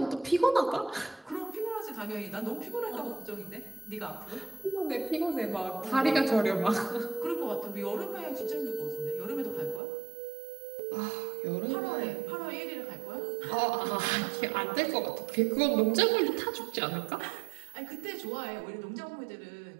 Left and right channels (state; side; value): drops out; left; at 9.8 s